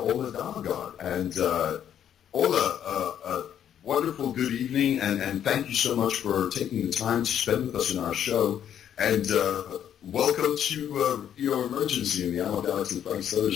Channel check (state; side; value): quieter; right; 9.7 dB